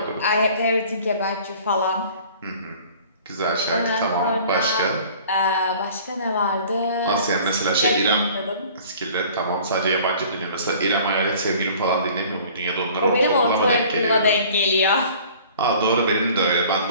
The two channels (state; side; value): inverted; both; correlation -0.49